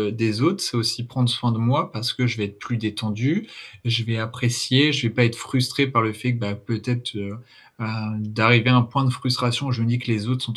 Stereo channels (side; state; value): both; identical; correlation 1.00